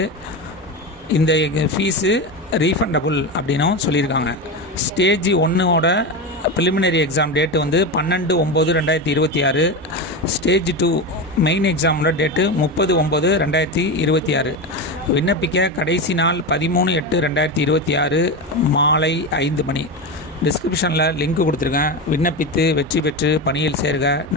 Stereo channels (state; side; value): normal; both; correlation 0.19